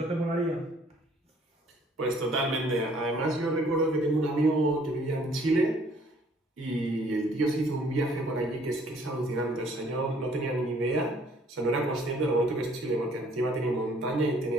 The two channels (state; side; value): normal; both; correlation 0.60